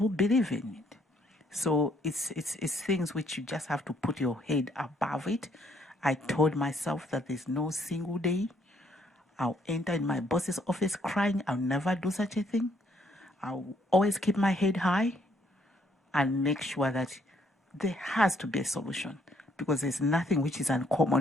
believe in it. So it's things which you just have to put your head above it. I told myself that there's no single day I'll enter in my boss's office crying. I'll never do such a thing. I'll always keep my head high and make sure that there has to be a solution, because there's nothing which is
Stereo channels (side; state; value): both; normal; correlation 0.68